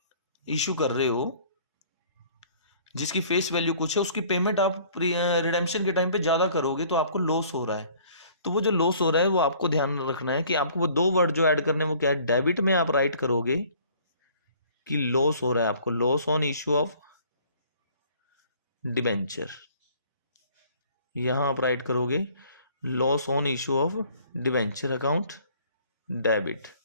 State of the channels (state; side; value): inverted; both; correlation -0.55